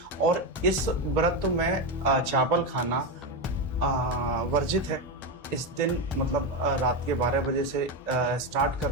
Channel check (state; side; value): normal; both; correlation 0.12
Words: और इस व्रत में चावल खाना वर्जित है। इस दिन मतलब रात के 12 बजे से स्टार्ट